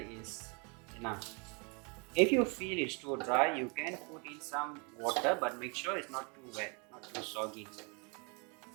enough. If you feel it's too dry, you can put in some water, but make sure it's not too wet, not too soggy.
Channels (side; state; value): left; quieter; 33.2 dB